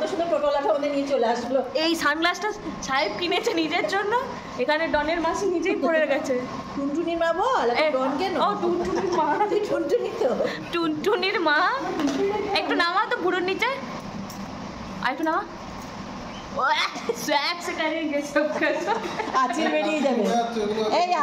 সুন্দর টোটোলাটা ওদের নিয়ে চলে আসলো। এই সানগ্লাসটা সাহেব কিনেছে নিজের জন্য, এখানে ডনের মাসি নিজেই পড়ে গেছে। টুনটুনির মা বল, ডন কেন? ও টুনটুনির মা, টুনটুনি তো টুনটুনির মা। একটু নামা তো বুড়োর নিচে, আর একটু নামা। আঁচিল বেরিয়ে যাবে, এই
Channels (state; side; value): identical; both; correlation 1.00